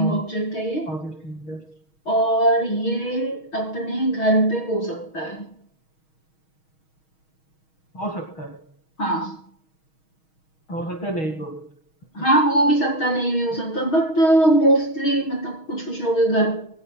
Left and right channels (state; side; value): late; right; 6.3 ms